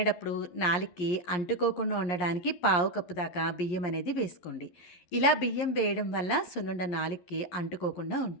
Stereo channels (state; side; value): late; right; 11 ms